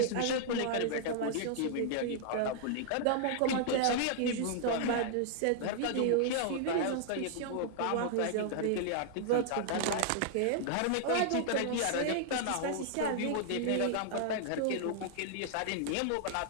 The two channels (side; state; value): both; different; correlation -0.01